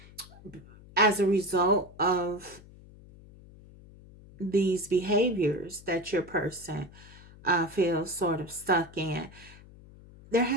as a result of these behaviors that your person feels sort of stuck in, there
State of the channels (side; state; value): left; noise; hum, 21 dB below the sound